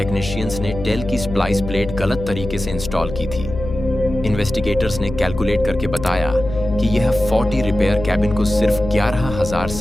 ने टेल की स्प्लाइस प्लेट गलत तरीके से इंस्टॉल की थी। इन्वेस्टिगेटर्स ने कैलकुलेट करके बताया कि यह 40 रिपेयर कैबिन को सिर्फ 11,000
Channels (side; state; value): left; noise; hum, 8 dB below the sound